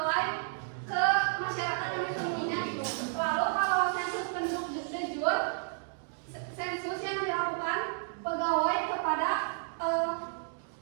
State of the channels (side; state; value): left; silent; digital silence